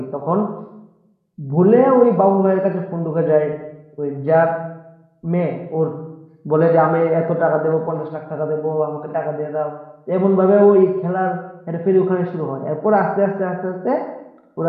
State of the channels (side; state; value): both; identical; correlation 1.00